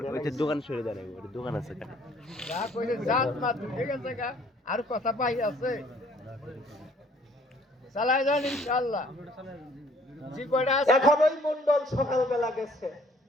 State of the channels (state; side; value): normal; both; correlation 0.59